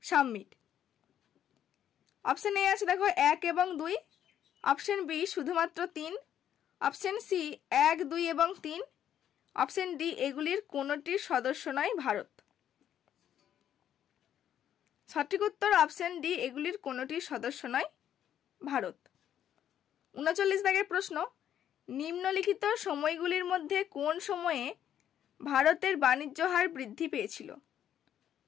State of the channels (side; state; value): right; quieter; 10.3 dB